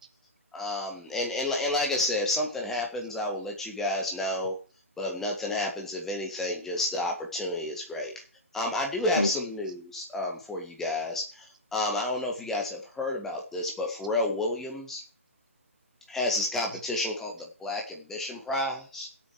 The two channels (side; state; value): both; normal; correlation -0.02